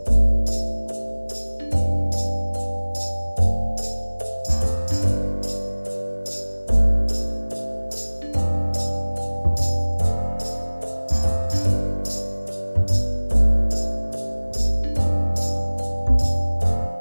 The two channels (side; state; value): both; inverted; correlation -1.00